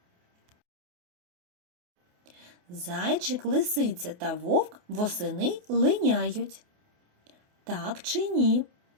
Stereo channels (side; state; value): left; late; 28 ms